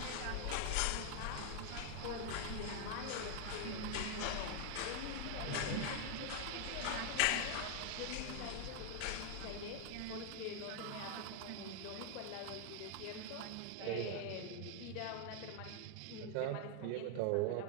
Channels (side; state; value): both; different; correlation 0.01